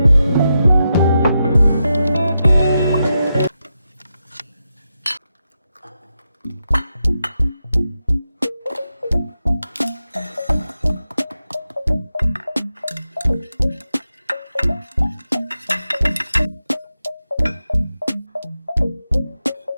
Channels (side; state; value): both; inverted; correlation -0.87